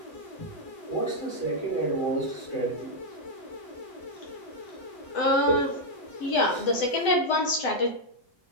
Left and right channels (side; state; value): right; late; 7.8 ms